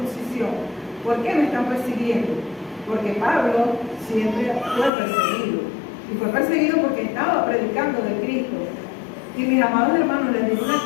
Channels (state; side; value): drops out; right; at 4.9 s